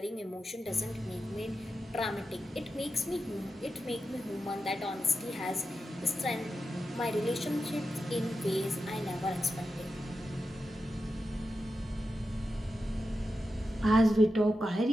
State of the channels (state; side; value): normal; both; correlation 0.90